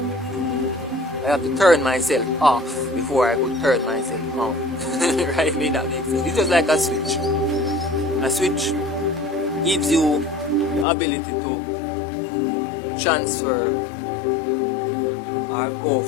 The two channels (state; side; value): drops out; right; at 10.9 s